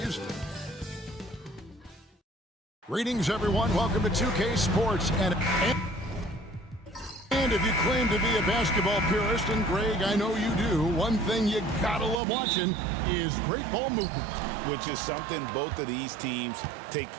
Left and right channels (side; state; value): left; drops out; at 12.2 s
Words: Greetings, everyone. Welcome to 2K Sports. And if you claim to be a basketball purist, and Greg, I know you do, one thing you gotta love watching is great ball movement. Which is something both of these teams take